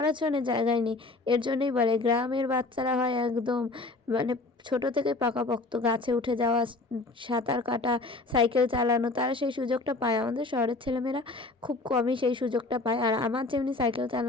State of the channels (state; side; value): quieter; right; 3.3 dB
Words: জন্য জায়গায় নেই। এর জন্যই বলে গ্রামের বাচ্চারা হয় একদম মানে ছোট থেকে পাকাপোক্ত, গাছে উঠে যাওয়া, সাঁতার কাটা, সাইকেল চালানো, তারা সেই সুযোগটা পায়। আমাদের শহরের ছেলেমেয়েরা খুব কমই সেই সুযোগটা পায়। আর আমার যেমনি সাইকেল